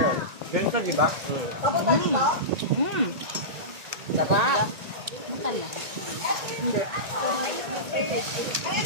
Ganito, di ba? Sarap. Matala. Hindi.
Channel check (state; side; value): late; left; 1.9 ms